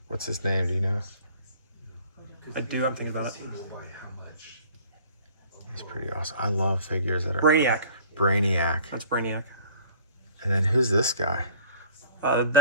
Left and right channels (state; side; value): inverted; both; correlation -0.50